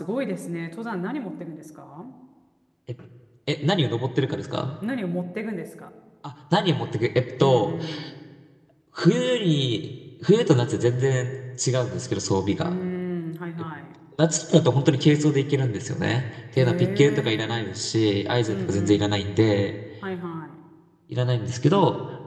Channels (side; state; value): both; identical; correlation 1.00